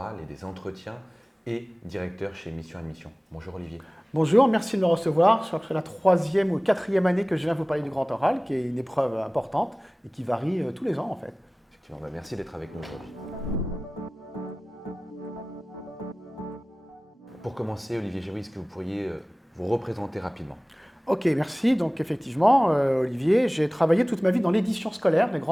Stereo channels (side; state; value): both; normal; correlation 0.98